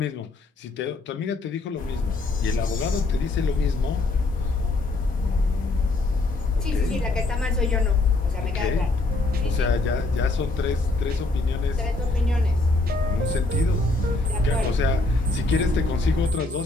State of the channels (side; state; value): right; quieter; 3.1 dB